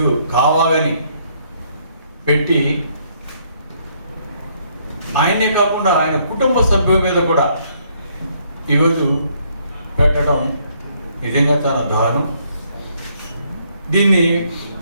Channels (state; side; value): inverted; both; correlation -0.69